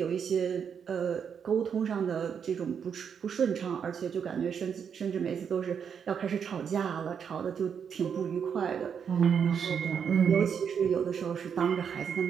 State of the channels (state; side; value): quieter; left; 7.3 dB